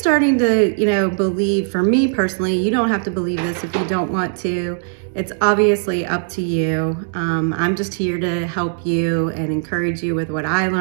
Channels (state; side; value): silent; left; digital silence